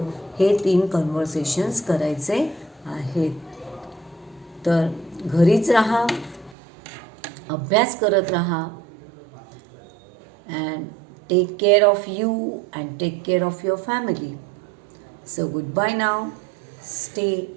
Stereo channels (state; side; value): drops out; left; at 6.6 s